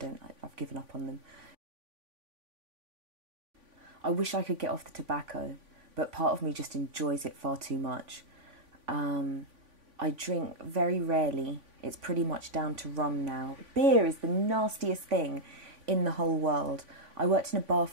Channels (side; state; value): left; late; 3.5 ms